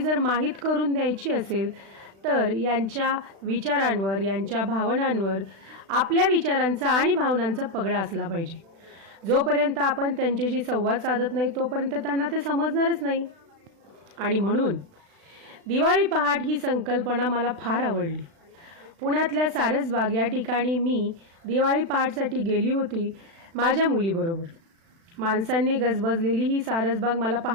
माहीत करून द्यायची असेल तर यांच्या विचारांवर, यांच्या भावनांवर आपल्या विचारांचा आणि भावनांचा पगडा असला पाहिजे. जोपर्यंत आपण त्यांच्याशी संवाद साधत नाही तोपर्यंत त्यांना ते समजणारच नाही. आणि म्हणून दिवाळी पहाट ही संकल्पना मला फार आवडली. पुण्यातल्या सारसबाग या ठिकाणी मी दिवाळी पहाटसाठी गेली होती माझ्या मुलीबरोबर. माणसांनी गजबजलेली ही सारसबाग मला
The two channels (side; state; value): left; late; 36 ms